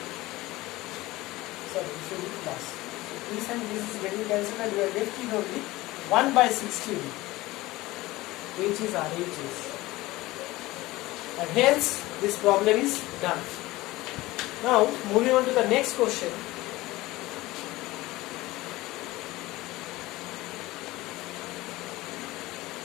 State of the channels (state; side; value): quieter; right; 19.0 dB